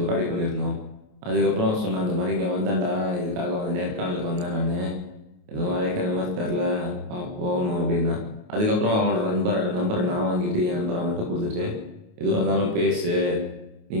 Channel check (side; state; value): left; late; 28 ms